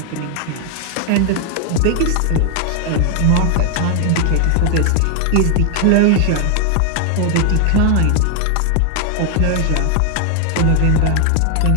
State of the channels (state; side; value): different; both; correlation 0.00